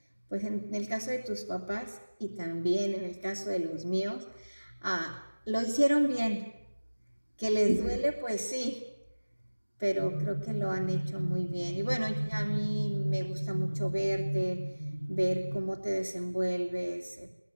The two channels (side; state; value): both; inverted; correlation -1.00